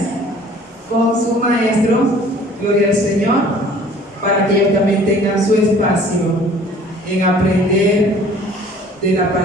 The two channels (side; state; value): both; normal; correlation 0.51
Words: con su maestro, gloria al Señor, para que ellos también tengan su espacio en aprender de la